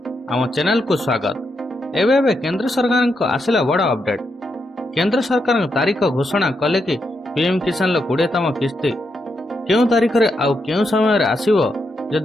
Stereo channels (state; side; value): normal; both; correlation 0.82